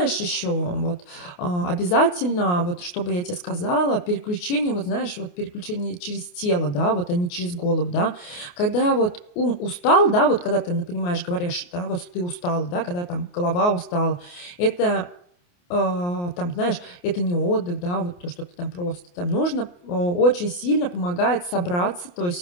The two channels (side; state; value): right; late; 28 ms